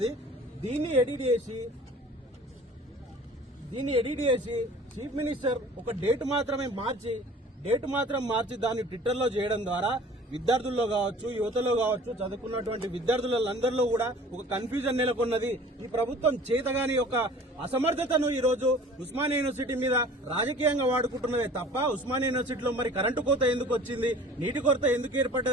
దీన్ని ఎడిట్ చేసి చీఫ్ మినిస్టర్ ఒక డేట్ మాత్రం మార్చి దాన్ని ట్విట్టర్లో చేయడం ద్వారా విద్యార్థుల్లో కావచ్చు, యువతలో కావచ్చు, చదువుకున్నటువంటి విద్యార్థులందరిలో కూడా ఒక కన్ఫ్యూజన్ నెలకొన్నది. ఈ ప్రభుత్వం చేతగాని ఒక అసమర్థతను ఈ రోజు ఉస్మానియా యూనివర్సిటీ మీద రాజకీయంగా వాడుకుంటున్నదే తప్ప ఉస్మానియా యూనివర్సిటీలో మరి కరెంటు కోత ఎందుకు వచ్చింది, నీటి కొరత ఎందుకు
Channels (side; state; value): both; normal; correlation 0.46